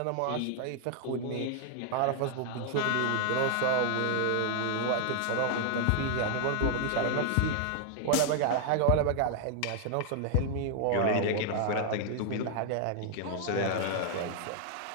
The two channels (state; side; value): different; both; correlation 0.00